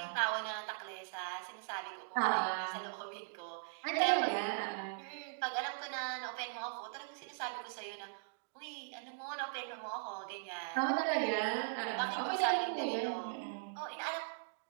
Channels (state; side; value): silent; left; digital silence